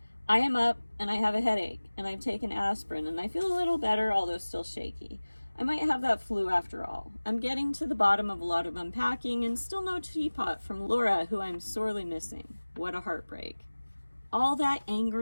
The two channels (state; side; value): inverted; both; correlation -1.00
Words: I am up and I have a headache and I've taken aspirin and I feel a little better, although still shaky. I might have that flu after all. I'm getting to the bottom of a lot of unpacking and still no teapot from Laura, who I'm sorely missing. What a heartbreak. All that